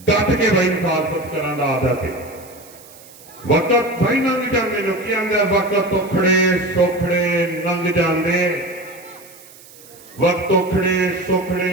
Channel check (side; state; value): right; noise; hiss, 22 dB below the sound